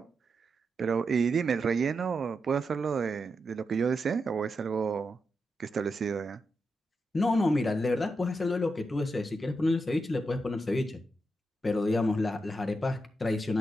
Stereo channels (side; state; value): both; normal; correlation 0.86